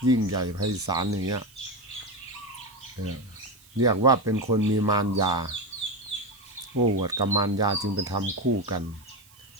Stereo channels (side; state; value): right; noise; hiss, 26 dB below the sound